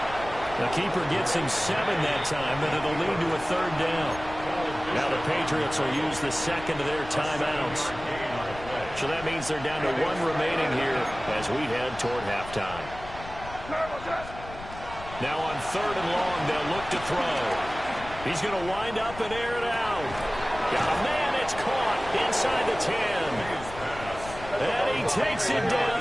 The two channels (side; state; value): left; noise; rumble, 14 dB below the sound